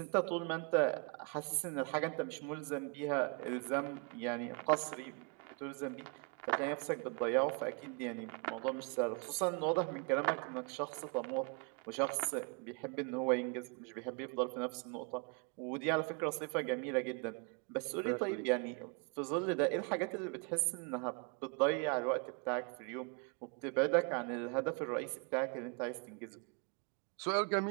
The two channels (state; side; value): quieter; left; 35.6 dB